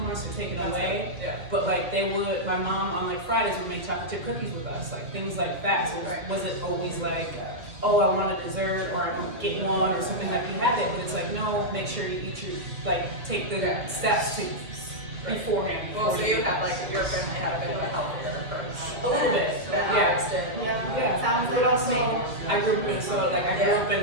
us or taken away. Yeah. But like they would, my mom on like Fridays would make chocolate chip cookies with us, like things like that. So it wasn't always like, oh, I want a dessert or I don't get one or something, like you had it, but it's like, no, make sure you eat your, like, take the steps to beforehand. Well, so you had like, your family had a bit of a healthier approach. A little bit, Yeah. yeah. Sounds But like also, I grew up in Minnesota, like I grew up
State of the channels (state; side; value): late; left; 2.3 ms